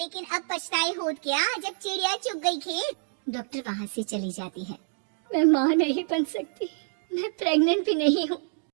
अब पछताए होत क्या जब चिड़िया चुग गई खेत। डॉक्टर वहाँ से चली जाती है। मैं माँ नहीं बन सकती, मैं प्रेग्नेंट भी नहीं हूँ।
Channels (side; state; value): left; silent; digital silence